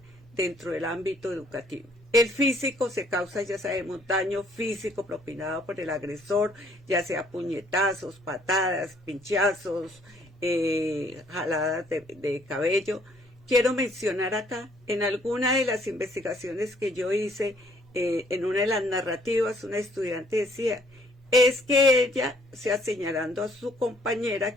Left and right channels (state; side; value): normal; both; correlation 0.63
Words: dentro del ámbito educativo. El físico se causa, ya sabemos, daño físico propinado por el agresor, ya sea puñetazos, patadas, pinchazos, jaladas de cabello. Quiero mencionar acá, en alguna de las investigaciones que yo hice, en una de las narrativas, una estudiante decía, es que ella, señalando a su compañera